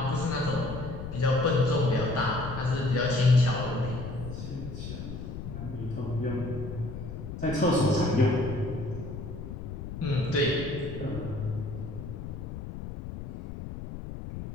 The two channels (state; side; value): noise; left; rumble, 8 dB below the sound